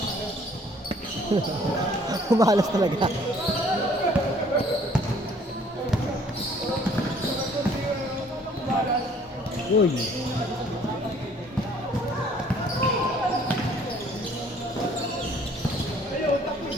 Umalas talaga. Uy.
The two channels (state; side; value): normal; both; correlation 0.58